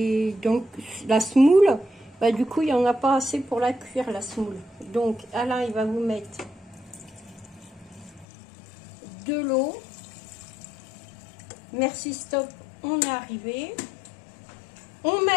la semoule, bah du coup il n'y en a pas assez pour la cuire la semoule. Donc Alain il va vous mettre de l'eau. Merci, stop, on est arrivé. On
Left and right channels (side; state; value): right; drops out; at 8.2 s